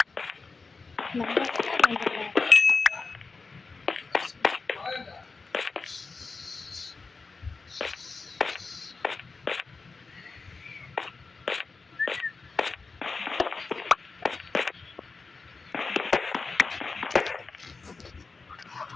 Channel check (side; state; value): right; quieter; 4.2 dB